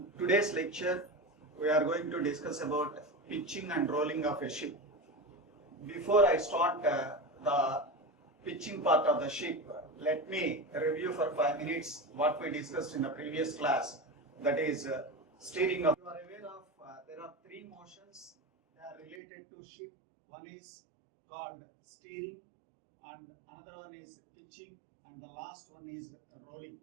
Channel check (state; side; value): drops out; left; at 19.2 s